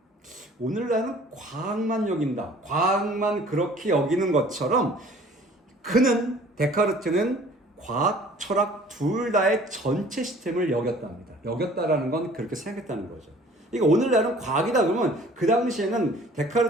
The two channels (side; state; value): both; normal; correlation 0.51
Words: 오늘날은 과학만 여긴다. 과학만 그렇게 여기는 것처럼 그는, 데카르트는 과학, 철학 둘 다의 전체 시스템을 여겼답니다. 여겼다라는 건 그렇게 생각했다는 거죠. 그러니까 오늘날은 과학이다 그러면 그 당시에는